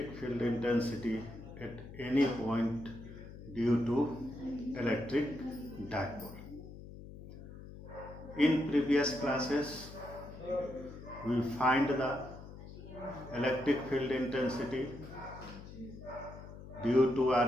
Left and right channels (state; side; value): noise; left; hum, 14 dB below the sound